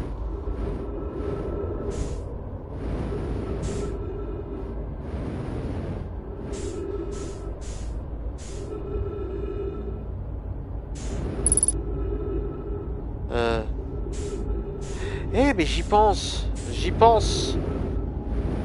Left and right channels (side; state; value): both; identical; correlation 1.00